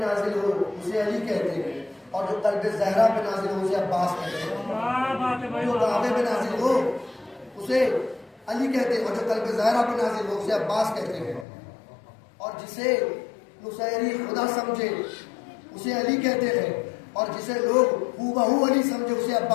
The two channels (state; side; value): drops out; right; at 11.5 s